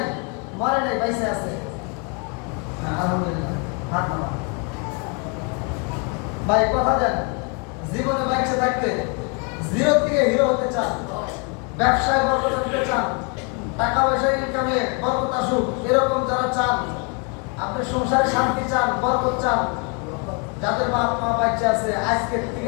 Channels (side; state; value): right; quieter; 35.5 dB